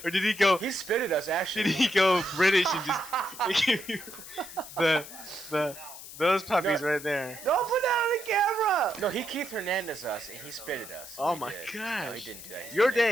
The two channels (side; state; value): left; noise; hiss, 14 dB below the sound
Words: Or did he go? he spit at us actually. Did he go British and just give you those puppies right there? Don't put that on the camera! No, he Keith Hernandez us and he spit at us. Oh He my did. No, he gosh! didn't do that. He Your spit at us.